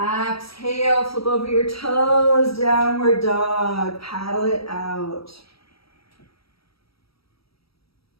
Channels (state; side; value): late; right; 0.76 ms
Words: Flip over your toes. Downward dog. Paddle it out.